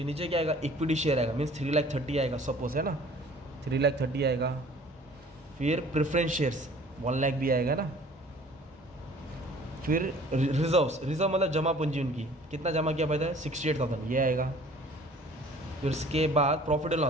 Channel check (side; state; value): both; normal; correlation 0.50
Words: नीचे क्या आएगा? इक्विटी शेयर आएगा, मीन्स 3,30,000 आएगा सपोज, है ना, 3,30,000 आएगा। फिर प्रेफरेंस शेयर्स 1,00,000 भी आएगा ना। फिर रिजर्व मतलब जमा पूंजी उनकी, कितना जमा किया पैसा है? 68,000, ये आएगा। फिर उसके बाद प्रॉफिट एंड